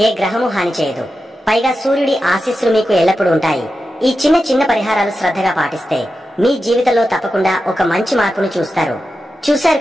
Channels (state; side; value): normal; both; correlation 0.91